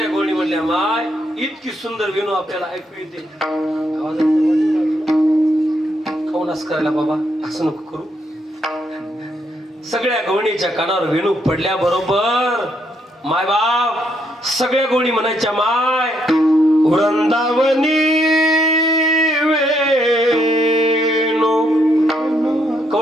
गवळणी म्हणल्या, माय इतकी सुंदर वेणू आपल्याला ऐकू येते. खाऊनच करायला बाबा, असं नको करू. सगळ्या गवळणीच्या कानावर वेणू पडल्या बरोबर माय बाप सगळ्या गवळणी म्हणायच्या, माय वृंदावनी वेणू.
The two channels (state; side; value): normal; both; correlation 0.75